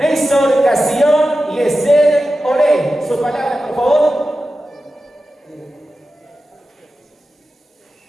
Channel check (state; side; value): normal; both; correlation 0.93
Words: Castillón y Esther Olé. Sus palabras, por favor.